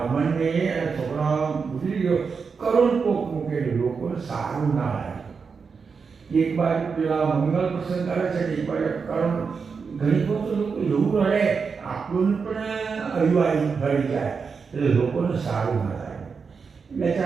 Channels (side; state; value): left; quieter; 5.4 dB